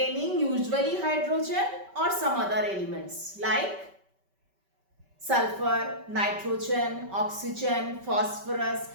usually hydrogen or some other elements like sulfur, nitrogen, oxygen, phosphorus,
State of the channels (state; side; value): late; left; 5.2 ms